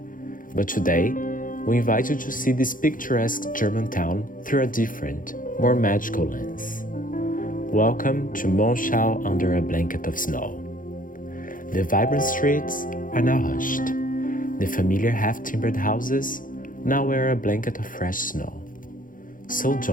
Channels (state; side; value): late; right; 0.39 ms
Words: But today, we invite you to see this picturesque German town through a different, more magical lens. Welcome to Monschau under a blanket of snow. The vibrant streets are now hushed. The familiar half-timbered houses now wear a blanket of fresh snow. So